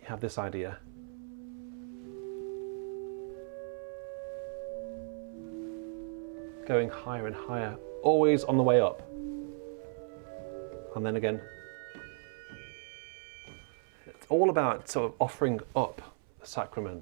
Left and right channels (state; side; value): silent; left; 54 dB below the other